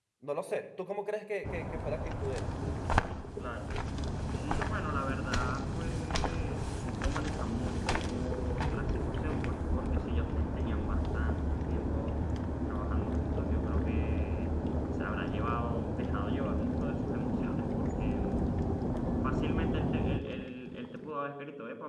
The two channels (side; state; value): both; identical; correlation 1.00